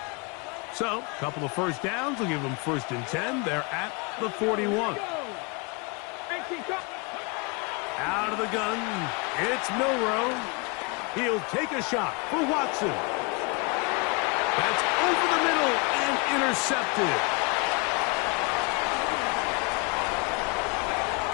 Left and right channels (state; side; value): quieter; right; 30.7 dB